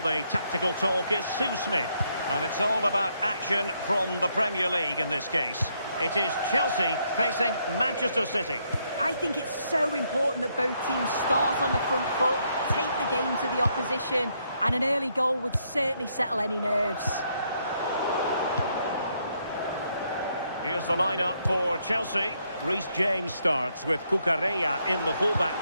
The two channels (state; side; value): inverted; both; correlation -0.74